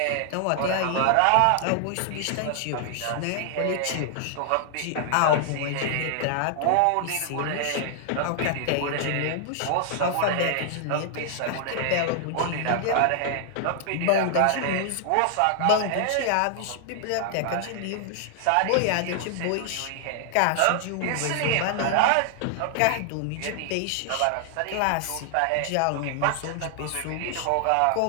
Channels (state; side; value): different; both; correlation 0.00